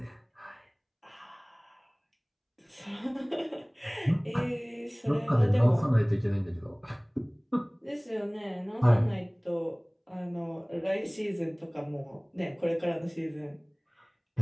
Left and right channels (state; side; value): identical; both; correlation 1.00